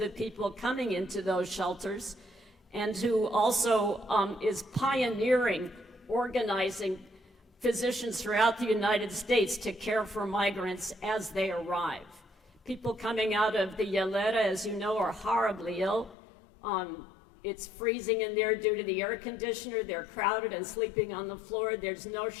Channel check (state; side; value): drops out; right; at 16.2 s